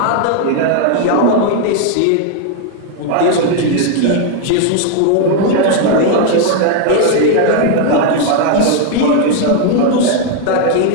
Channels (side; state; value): both; different; correlation 0.01